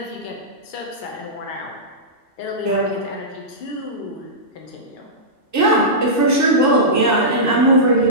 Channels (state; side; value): late; right; 2.7 ms